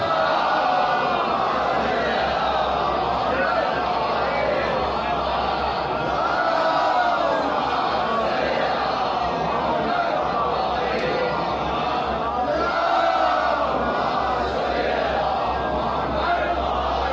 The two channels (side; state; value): both; identical; correlation 1.00